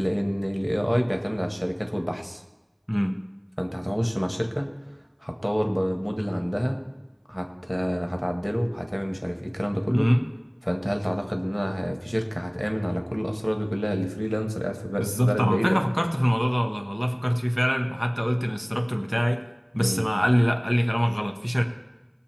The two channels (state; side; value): identical; both; correlation 1.00